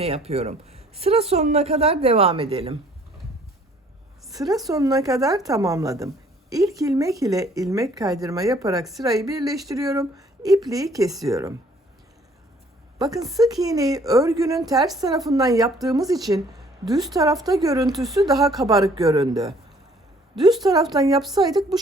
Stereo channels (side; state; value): both; normal; correlation 0.59